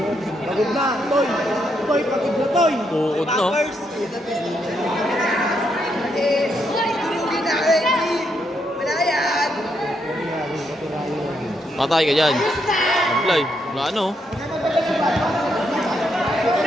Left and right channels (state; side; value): normal; both; correlation 0.78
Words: Pagod na, Toy. Toy, pagod na, Toy. Bukod no. Patay ka dyan. Apply. Wala ano.